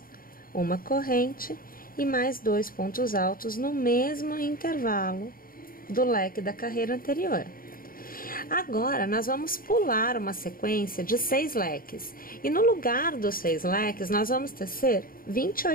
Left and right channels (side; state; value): right; late; 0.42 ms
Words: uma corrente e mais 2 pontos altos no mesmo intervalo do leque da carreira anterior. Agora, nós vamos pular uma sequência de 6 leques. E no lugar dos 6 leques, nós vamos tecer